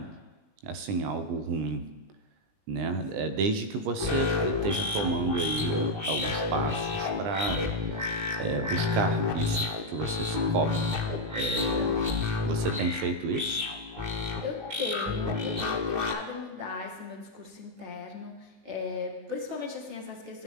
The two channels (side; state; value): left; late; 20 ms